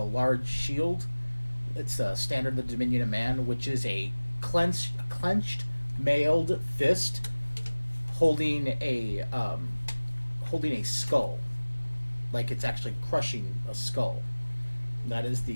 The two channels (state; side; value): inverted; both; correlation -1.00